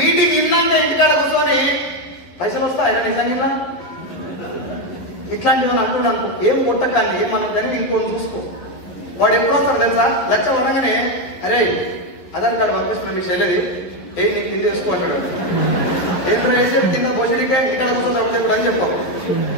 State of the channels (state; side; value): late; right; 11 ms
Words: ఇన్నాక ఇంటికాడ కూర్చొని పైసలు వస్తాయి నిజంగా ఇట్లాంటివి అంటున్నాను. ఏం కొట్టకాన్ని ఏమన్నా కానీ ఇంకొని చూసుకో. వాడు ఎప్పుడు వస్తారు తెలుసా? లక్ష వరంగానే అరే ఆధార్ కార్డు పంపిస్తున్నా మీకు చెల్లెది నీకు కింద వేసుకో అంటాడు. ఏంటో వేసేది కింద పోషడికే ఇక్కడ కూర్చొని చెప్పు అని చెప్పావు.